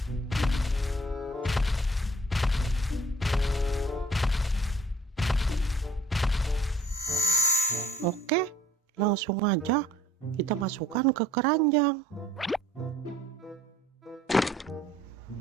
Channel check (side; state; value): both; normal; correlation 0.57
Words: Oke, langsung aja kita masukkan ke keranjang.